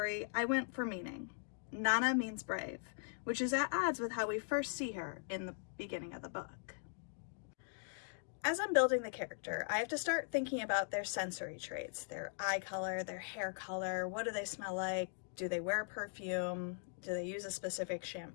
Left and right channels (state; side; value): silent; right; digital silence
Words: I went for meaning. Nana means brave, which is at odds with how we first see her in the beginning of the book. As I'm building the character, I have to start thinking about their sensory traits, their eye color, their hair color, what do they smell like, do they wear perfume, do they use a specific